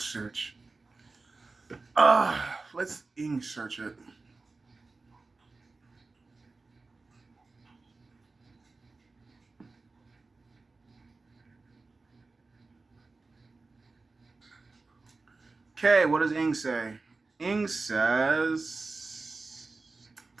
Let's English search it. Okay, what does Ing say? Ing says,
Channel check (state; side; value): quieter; left; 3.7 dB